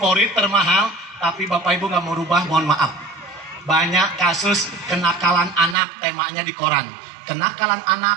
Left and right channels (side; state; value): left; drops out; at 5.8 s